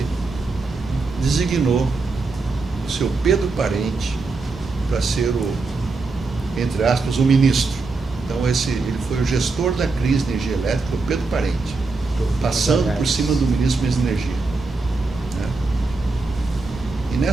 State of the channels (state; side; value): quieter; left; 3.8 dB